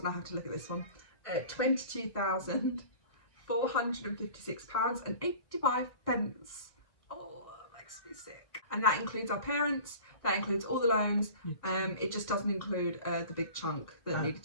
I have to look at this one, £22,456.85. Oh, that makes me sick. And that includes our parents, that includes all the loans. It just doesn't include the big chunk that needed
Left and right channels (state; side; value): late; right; 1.6 ms